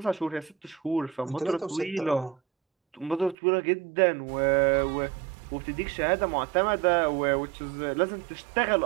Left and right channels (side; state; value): left; drops out; at 3.4 s